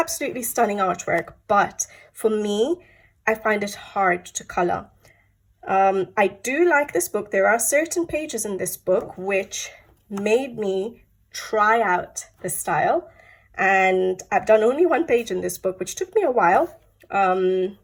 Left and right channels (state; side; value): identical; both; correlation 1.00